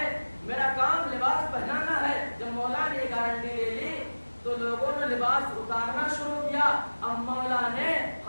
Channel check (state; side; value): inverted; both; correlation -1.00